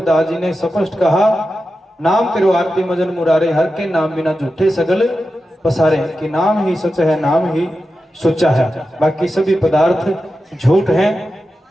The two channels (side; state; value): both; normal; correlation 0.91